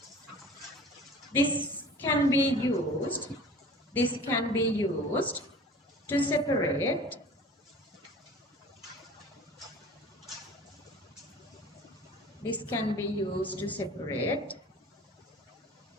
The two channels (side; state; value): both; normal; correlation 0.43